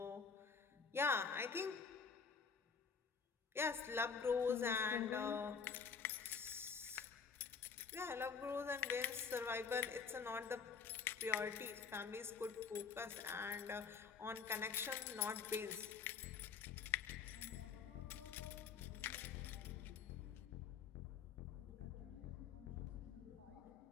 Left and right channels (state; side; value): quieter; right; 5.9 dB